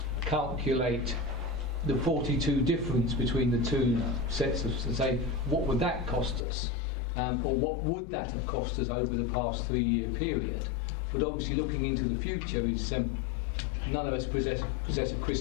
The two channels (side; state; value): right; drops out; at 6.5 s